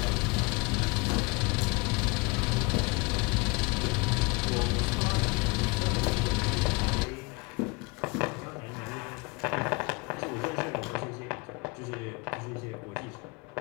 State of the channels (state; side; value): quieter; right; 26.6 dB